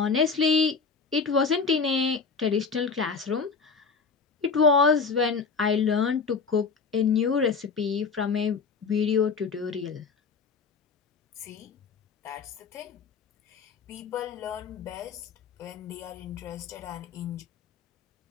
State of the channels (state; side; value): quieter; right; 5.1 dB